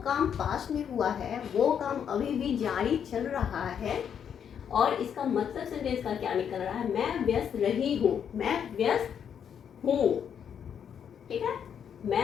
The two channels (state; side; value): quieter; right; 8.1 dB